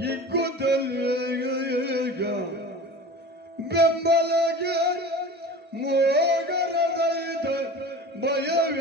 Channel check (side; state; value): both; normal; correlation 0.36